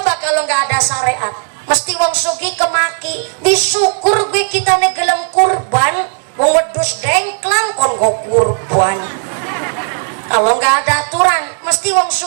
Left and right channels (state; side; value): silent; left; digital silence